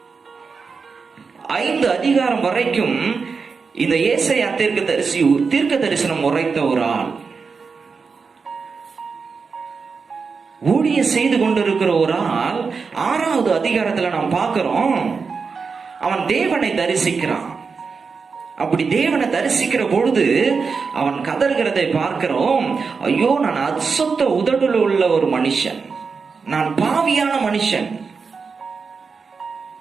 5 அதிகாரம் வரைக்கும் இந்த ஏசாயா தீர்க்கதரிசி தீர்க்க தரிசனம் உரைத்த ஒரு ஆள். ஊழிய செய்து கொண்டிருக்கிற ஒரு ஆள் 6வது அதிகாரத்துல நாம் பார்க்கிறோம், அவன் தேவனை தரிசிக்கிறான். அப்படி தேவனை தரிசிக்கிற பொழுது அவன் கதறுகிறதை பார்க்கிறோம். ஐயோ, நான் அசுத்த உதடுல உள்ள ஒரு மனுஷன், நான் பாவியான மனுஷன்,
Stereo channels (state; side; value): quieter; left; 5.1 dB